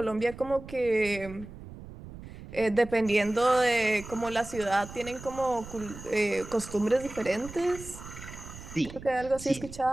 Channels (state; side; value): noise; right; rumble, 14 dB below the sound